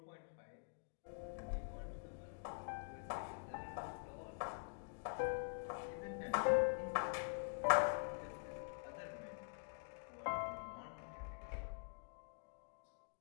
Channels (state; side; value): silent; right; digital silence